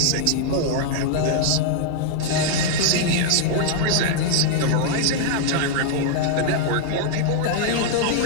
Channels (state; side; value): different; both; correlation 0.00